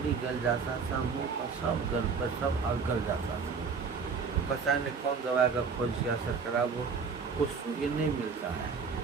गल जाता था, मुंह का सब गल पर सब और गल जाता था। पता नहीं कौन दवाई का खोज किया सरकार, वो कुष्ठ ये नहीं मिलता है,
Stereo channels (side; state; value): left; quieter; 5.4 dB